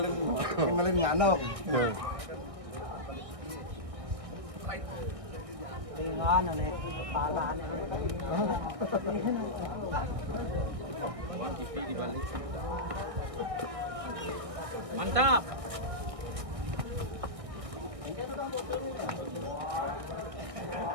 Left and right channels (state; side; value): late; left; 1.6 ms